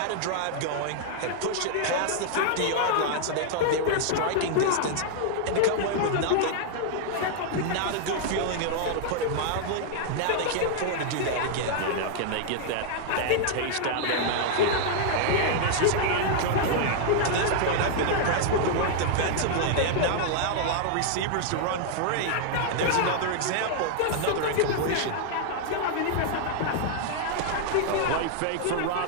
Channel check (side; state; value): both; different; correlation -0.01